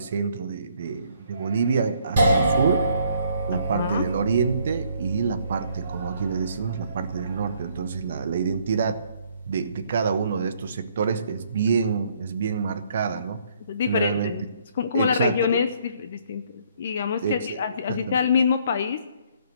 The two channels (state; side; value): inverted; both; correlation -0.66